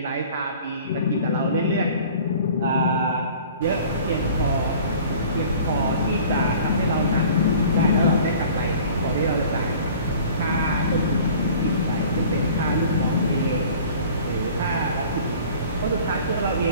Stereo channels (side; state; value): both; inverted; correlation -0.47